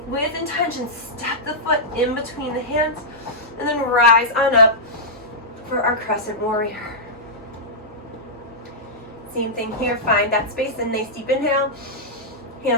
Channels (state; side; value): normal; both; correlation -0.12